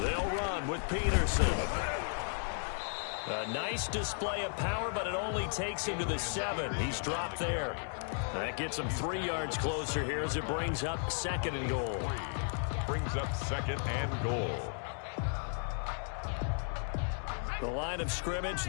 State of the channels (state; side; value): silent; right; 55 dB below the other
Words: run with Peterson. A nice display of power, but it only takes him to the 7. He's dropped there. That gets him 3 yards closer here as it brings up 2nd and goal. Brings up 2nd and goal. The line of scrimmage,